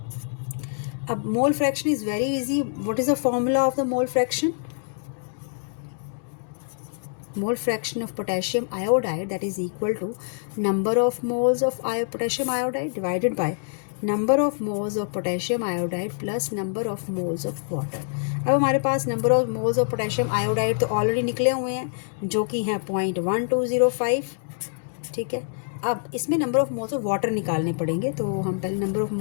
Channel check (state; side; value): silent; right; digital silence